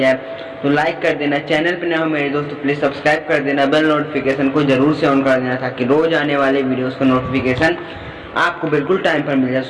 तो लाइक कर देना, चैनल पर नए हो मेरे दोस्तों प्लीज सब्सक्राइब कर देना, बेल नोटिफिकेशन को जरूर से ऑन कर देना ताकि रोज आने वाले वीडियोस का नोटिफिकेशन आपको बिल्कुल टाइम पर मिल जाए।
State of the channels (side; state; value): both; identical; correlation 1.00